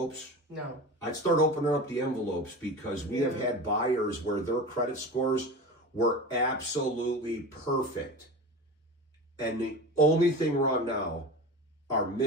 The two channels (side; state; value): both; normal; correlation 0.30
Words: No. I'd start opening up the envelopes because we have had buyers where their credit scores were absolutely perfect. And the only thing wrong now are